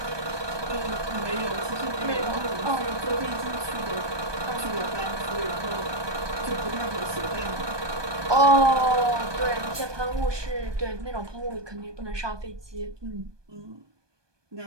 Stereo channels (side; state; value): left; late; 1.2 ms